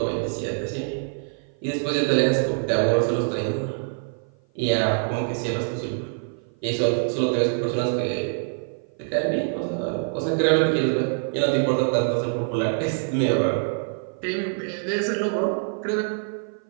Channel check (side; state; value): left; silent; 55 dB below the other